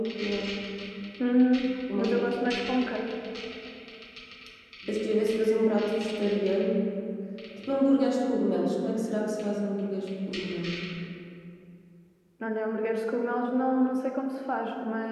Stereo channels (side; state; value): both; identical; correlation 1.00